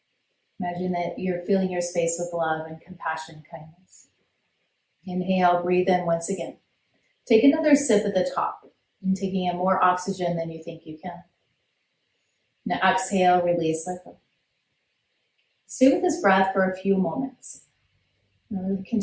Imagine that you're filling your space with love and compassion, kindness. Inhale, breathe in once again. Take another sip at the top, and taking in more oxygen than you think you can. Now exhale, release, let go. Stay with this breath for a few moments. We'll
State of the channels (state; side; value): identical; both; correlation 1.00